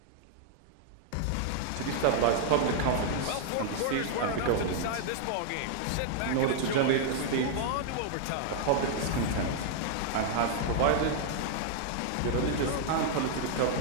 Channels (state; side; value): different; both; correlation 0.00